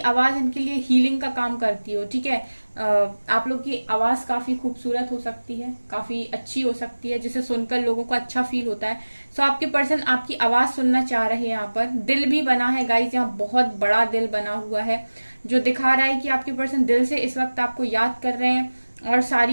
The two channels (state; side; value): inverted; both; correlation -1.00